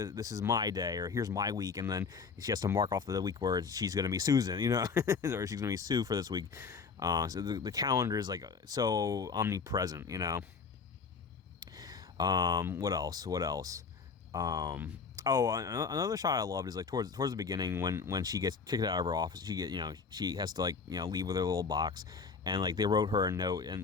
is my day, or here's my week, and then she has to mark off the week where she's going to be Susan, you know, or she's going to be Sue for this week. So the calendar is like so omnipresent, you know. What else? Oh, another shot I loved is like towards the beginning when she gets kicked out of her office. She has to, like, you know, leave with her little box, and like they wrote her a note,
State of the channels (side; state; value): right; quieter; 5.4 dB